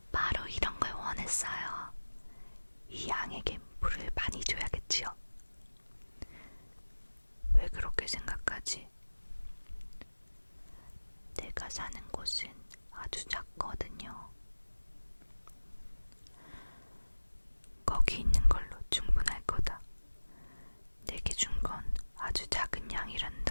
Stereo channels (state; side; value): inverted; both; correlation -1.00